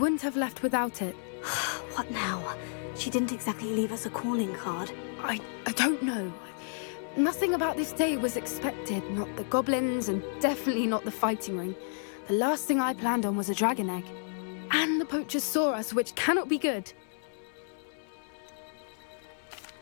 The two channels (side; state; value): right; silent; 57 dB below the other